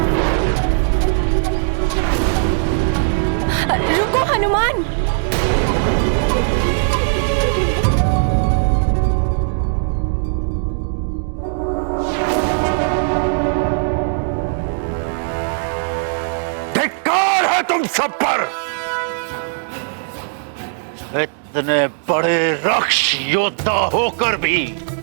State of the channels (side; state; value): left; silent; digital silence